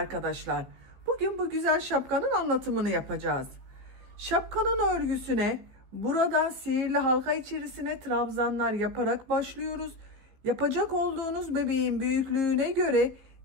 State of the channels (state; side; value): late; left; 15 ms